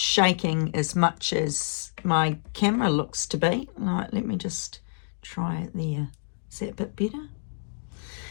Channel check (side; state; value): right; silent; digital silence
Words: as much as my camera looks to be. Right, let me just try it there. Is that a bit better?